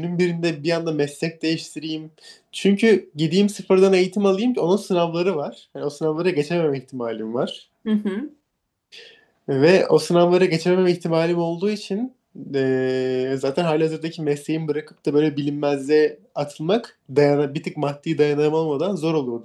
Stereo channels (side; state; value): both; identical; correlation 1.00